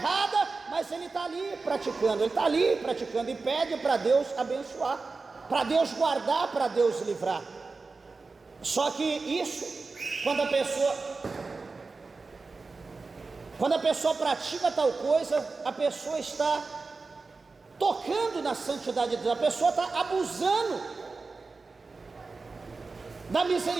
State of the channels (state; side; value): quieter; left; 4.0 dB